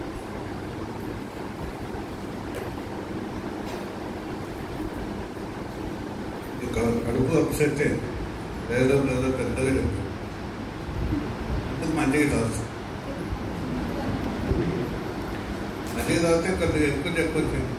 కడుపు అప్సెట్ ఏదో పెద్దగా చెప్పు, మంచిగా తాగుతుంది. మంచిగా తాగితే కొద్దిగా ఎక్కువ చెప్పొచ్చు.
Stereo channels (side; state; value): both; identical; correlation 1.00